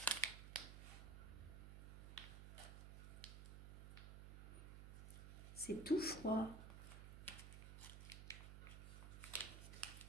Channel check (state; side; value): noise; right; hum, 8 dB below the sound